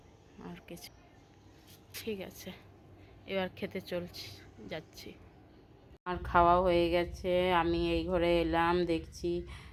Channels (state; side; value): identical; both; correlation 1.00